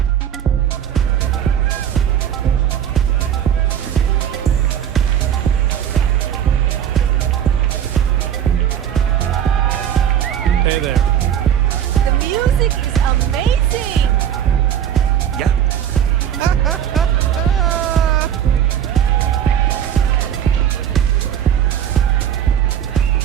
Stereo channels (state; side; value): quieter; left; 9.6 dB